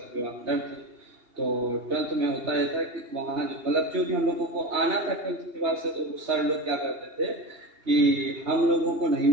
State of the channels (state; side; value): late; left; 2.8 ms